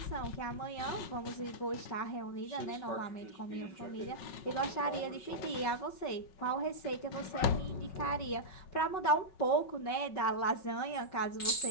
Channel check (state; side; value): late; right; 5.4 ms